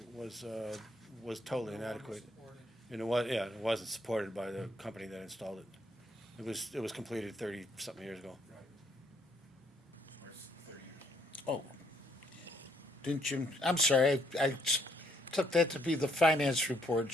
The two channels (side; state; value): both; normal; correlation 0.70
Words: was totally inadequate. And it wasn't supported by the company that installed it. It was completed 30-something years ago. Oh. Didn't Jim, I'm sorry, I took that to be the finance report,